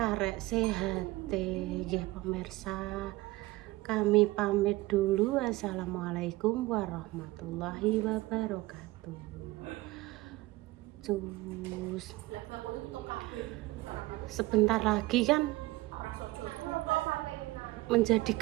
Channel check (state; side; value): quieter; left; 19.7 dB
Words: sehate. Nggih pemirsa, kami pamit dulu. Assalamualaikum warahmatullahi wabarakatuh. Cus. Sebentar lagi kan menjadi